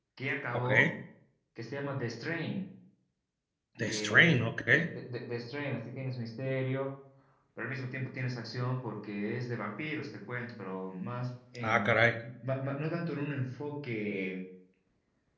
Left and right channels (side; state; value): both; identical; correlation 1.00